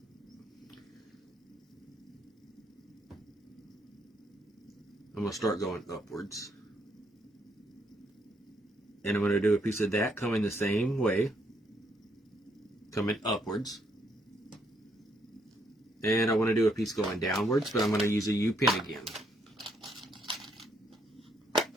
I'm going to start going upwards. And I'm going to do a piece of that coming the same way. Coming upwards. And I want to do a piece going downwards, but I'm going to use a U-pin again.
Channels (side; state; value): both; normal; correlation 0.72